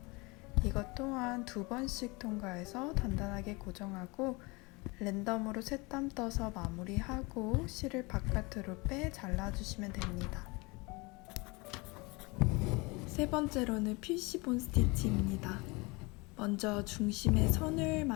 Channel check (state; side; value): quieter; right; 26.2 dB